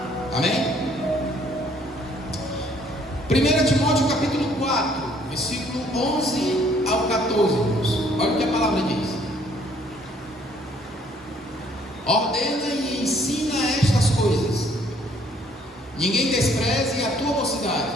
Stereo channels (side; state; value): both; normal; correlation 0.62